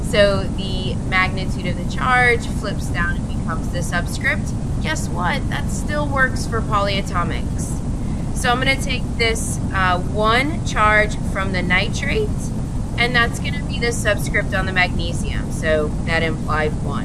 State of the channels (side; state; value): both; identical; correlation 1.00